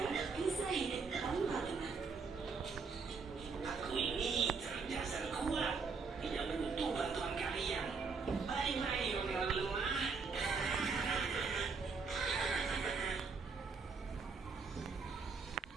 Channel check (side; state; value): left; quieter; 4.9 dB